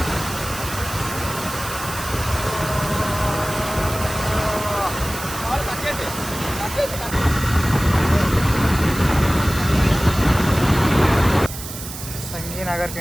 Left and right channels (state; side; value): noise; right; hiss, 10 dB below the sound